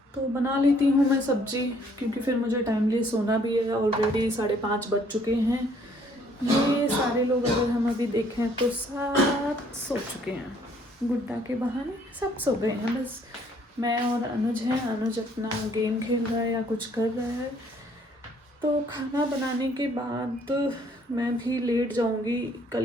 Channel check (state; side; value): normal; both; correlation 0.63